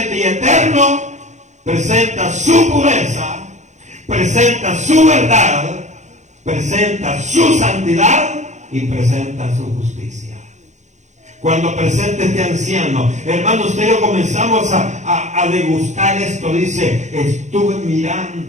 y eterno. Presenta su pureza, presenta su verdad, presenta su santidad y presenta su justicia. Cuando presenta este anciano, hermano, usted y yo comenzamos a degustar esto. Dice, estuve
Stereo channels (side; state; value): left; late; 0.34 ms